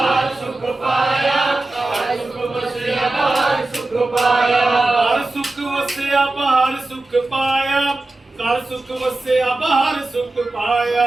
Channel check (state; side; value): quieter; left; 3.0 dB